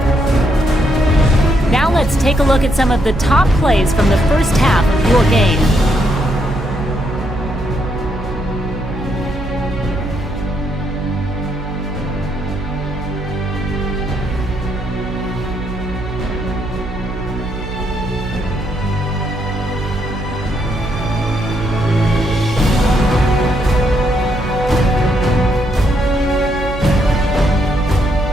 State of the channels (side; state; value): right; noise; hum, 10 dB below the sound